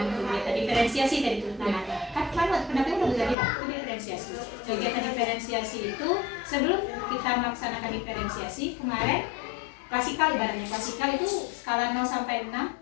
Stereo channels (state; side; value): drops out; right; at 3.4 s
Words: kegiatan diferensiasi tadi itu, nah kan waktu pendapatnya udah bisa bilang itu diferensiasi. Kegiatan diferensiasi itu sebelum kita melaksanakan diferensiasi kemarin klasikal, ibaratnya klasikal itu skala 0 sampai 6,